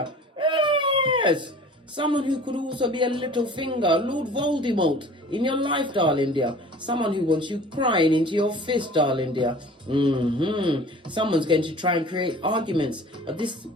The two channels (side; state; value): both; normal; correlation 0.44